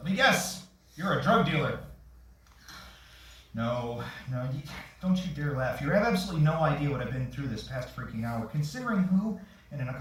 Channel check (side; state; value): both; identical; correlation 1.00